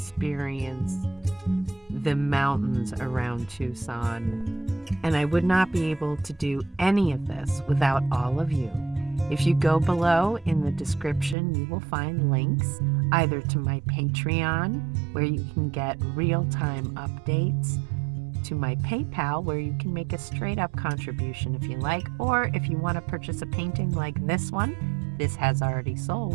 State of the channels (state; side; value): drops out; left; at 11.4 s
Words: the mountains around Tucson. And I would not be able to do any of this without all of you. If you go below in the description, you will find links either to my Patreon, where you can get real-time updates, to my PayPal, where you can make a straight-up contribution if you like, or if you want to purchase a painting like this one, this has already